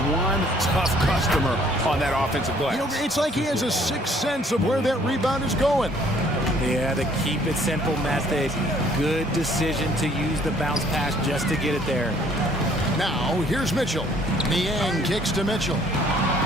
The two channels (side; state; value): both; normal; correlation 0.60